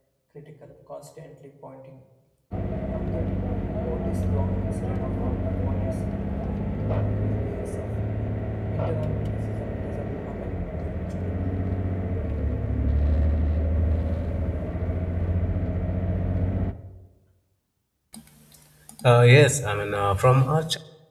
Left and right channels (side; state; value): both; identical; correlation 1.00